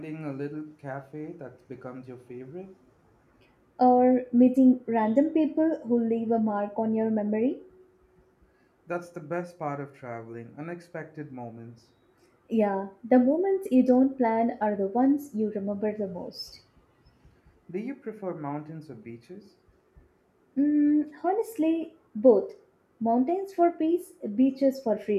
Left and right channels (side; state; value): both; identical; correlation 1.00